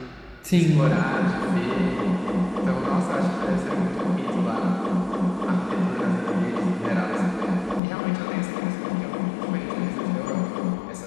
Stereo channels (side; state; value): right; drops out; at 7.8 s